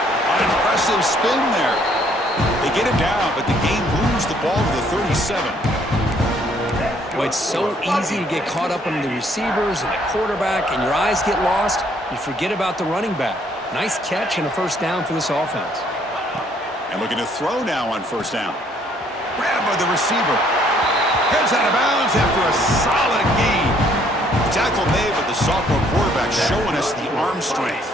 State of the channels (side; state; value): both; normal; correlation 0.65